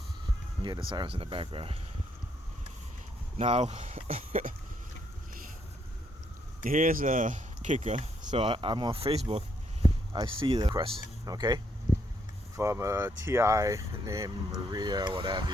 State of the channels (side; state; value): both; normal; correlation 0.73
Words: You hear the sirens in the background. Now, here's a kicker. So I'm on Facebook. I see the request, okay, from a TI named Maria, whatever,